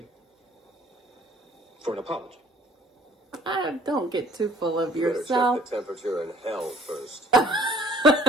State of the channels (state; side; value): normal; both; correlation 0.56